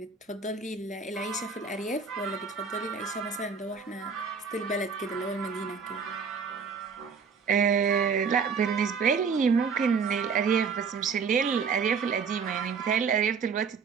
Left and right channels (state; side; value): quieter; left; 5.8 dB